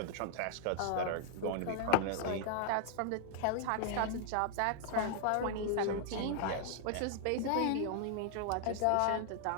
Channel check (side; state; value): both; different; correlation 0.00